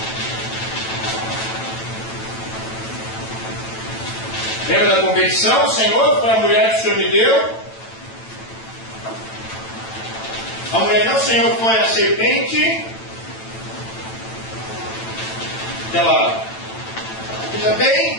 Lembra da competição? O Senhor, para a mulher que o Senhor me deu. A mulher não, o Senhor, foi a serpente. Ela veja bem,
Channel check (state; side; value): late; right; 9.0 ms